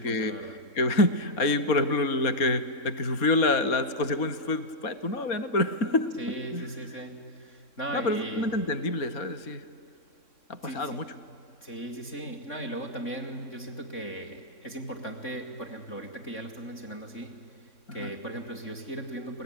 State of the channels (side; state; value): right; late; 3.6 ms